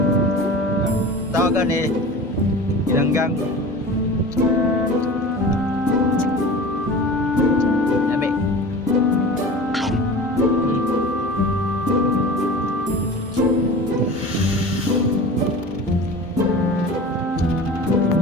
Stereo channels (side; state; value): both; normal; correlation 0.36